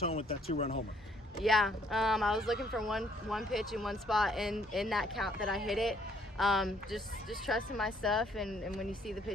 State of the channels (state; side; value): normal; both; correlation 0.65